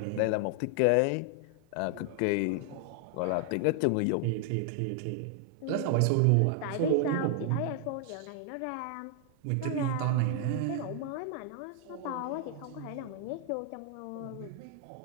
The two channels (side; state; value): both; different; correlation 0.00